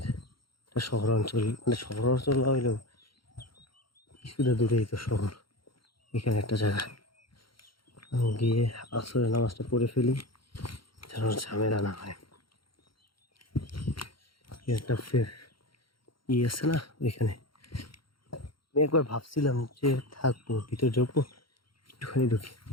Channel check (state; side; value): late; right; 0.73 ms